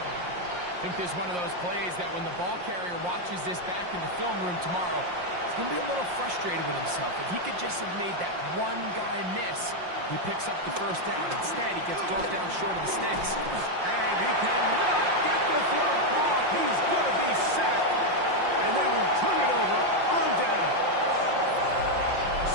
think this is one of those plays that when the ball carrier watches this back in the film room tomorrow, he's going to be a little frustrated with himself. If he could just have made that one guy miss, he picks up the 1st down. Instead, he gets brought down short of the sticks. And he cannot get the throw off. He's going to be sacked. And they will turn it over on down.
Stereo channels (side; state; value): left; late; 5.6 ms